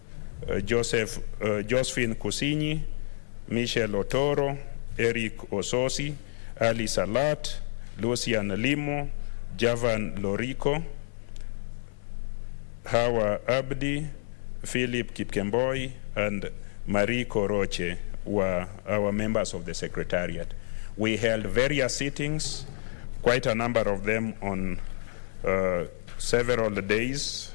Josephine Kusinyi, Michelle Otoro, Eric Ososi, Ali Salat, Lucian Limo, Javan Lorico, Hawa Abdi, Philip Kipkemboi, and Marie Koroche were our members of the Secretariat. We held various sittings, quite a number of them on several days.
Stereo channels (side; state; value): right; silent; 59 dB below the other